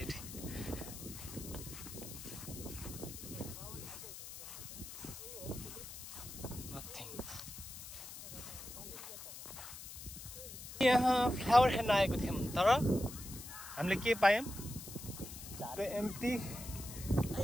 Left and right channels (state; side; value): noise; left; hiss, 11 dB below the sound